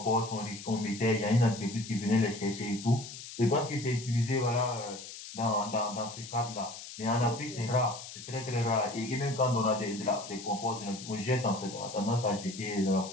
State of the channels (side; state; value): left; noise; hiss, 12 dB below the sound